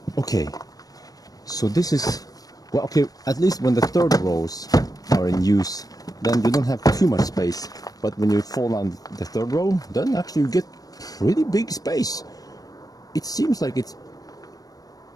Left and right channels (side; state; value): right; late; 0.18 ms